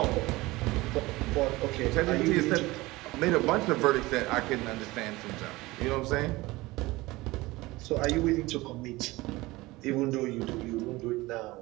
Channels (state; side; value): quieter; left; 20.4 dB